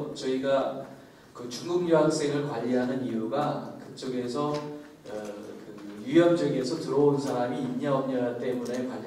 저희가 그 중국 유학생을 관리하는 이유가 그쪽에서 그 유염지역에서 들어온 사람이 있냐 없냐 때문에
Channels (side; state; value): both; identical; correlation 1.00